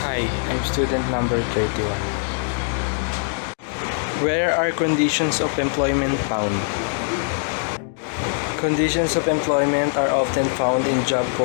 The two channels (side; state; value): right; silent; 64 dB below the other